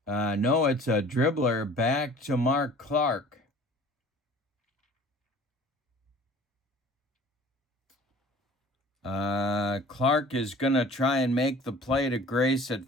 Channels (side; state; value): both; normal; correlation 0.48